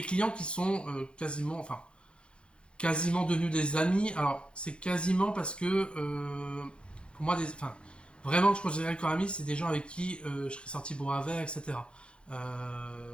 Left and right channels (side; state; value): right; late; 0.056 ms